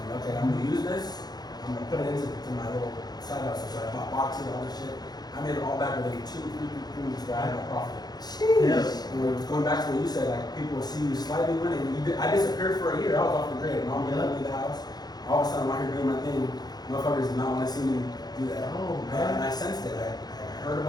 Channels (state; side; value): late; right; 0.19 ms